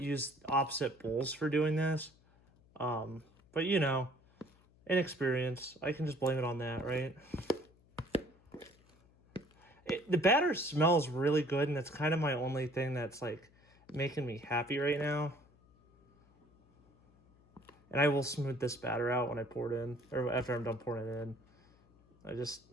opposite bowls for doing this. But, you know, inexperience. I can just blame it on that, right? The batter smells really good, and that's kind of my only thing that's, like, making me happy right now. And I will smooth this batter out when I pour it in, or after I'm done pouring it in. I just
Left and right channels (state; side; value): noise; left; hum, 30 dB below the sound